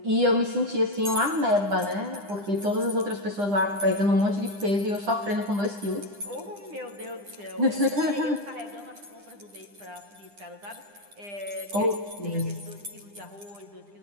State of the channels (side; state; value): left; late; 9.9 ms